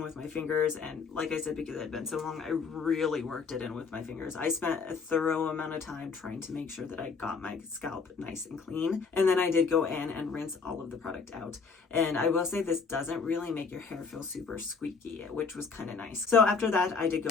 my fingers, and like I said, because it had been so long, I really worked it in with my fingers. I spent a thorough amount of time trying to make sure that I got my scalp nice and clean, and then I did go in and rinse all of the product out. And I will say this doesn't really make your hair feel super squeaky, which was kind of nice. So after that, I did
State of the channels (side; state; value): right; quieter; 5.1 dB